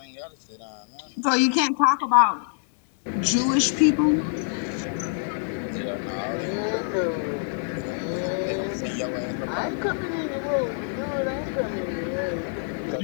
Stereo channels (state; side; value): silent; right; digital silence